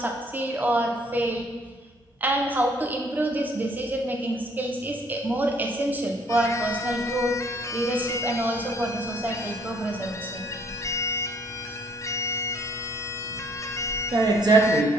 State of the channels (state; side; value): normal; both; correlation 0.62